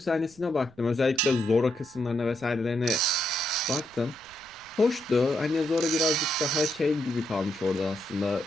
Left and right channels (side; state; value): right; noise; rumble, 27 dB below the sound